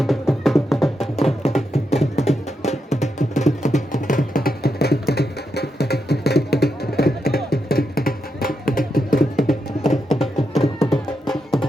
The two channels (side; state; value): both; normal; correlation 0.84